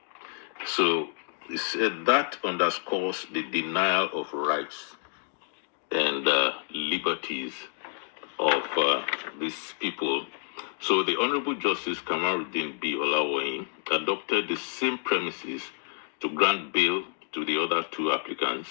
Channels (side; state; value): right; silent; 59 dB below the other